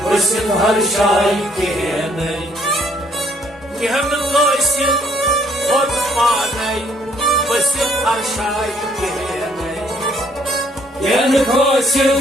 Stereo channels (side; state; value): both; normal; correlation 0.65